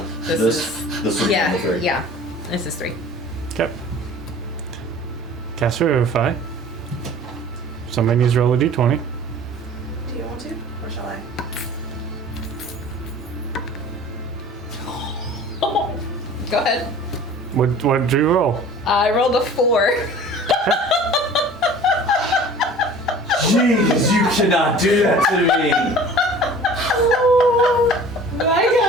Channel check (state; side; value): normal; both; correlation 0.44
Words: this is this would be yeah, the 3. yeah. This is 3. Okay. Cast Revivify. Somebody needs to roll a d20. Do you want to? Or shall I? Go ahead. What did you roll? I rolled a 4. Jeez, you cannot do that to me. Oh my